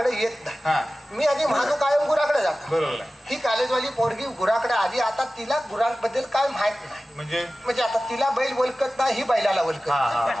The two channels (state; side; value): normal; both; correlation 0.96